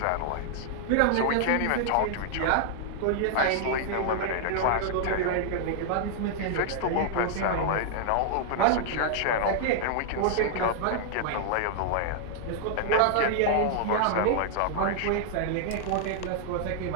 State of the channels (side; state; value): both; different; correlation -0.01